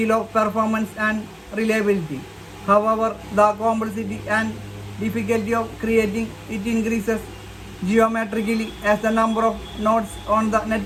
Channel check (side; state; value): both; identical; correlation 1.00